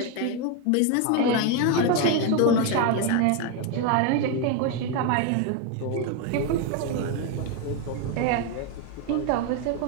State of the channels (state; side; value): different; both; correlation 0.02